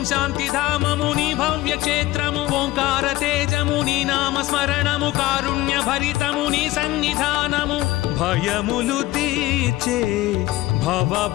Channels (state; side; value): quieter; right; 17.4 dB